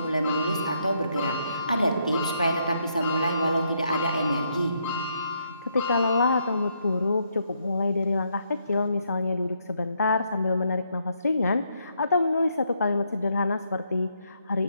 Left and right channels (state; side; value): inverted; both; correlation -0.75